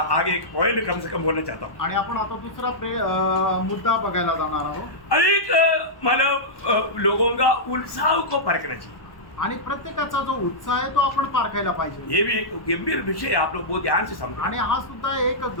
आगे एक पॉइंट कम से कम बोलना चाहता हूँ। आणि आपण आता दुसरा मुद्दा बघायला जाणार आहोत। अधिक मतलब लोगों का उत्साह को परखना चाहिए। आणि प्रत्येकाचा जो उत्साह आहे तो आपण पारखायला पाहिजे। ये भी एक गंभीर विषय है, आप लोग बहुत ध्यान से समझो। आणि हा सुद्धा एक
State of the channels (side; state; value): right; late; 1.0 ms